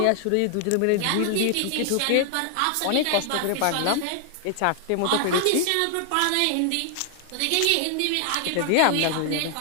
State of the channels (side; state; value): both; different; correlation 0.00